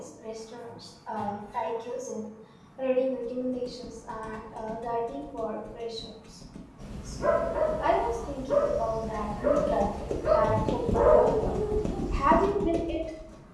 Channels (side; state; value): both; identical; correlation 1.00